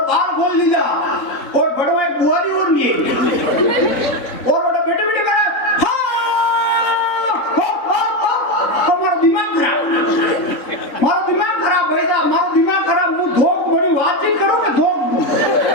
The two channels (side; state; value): right; late; 3.7 ms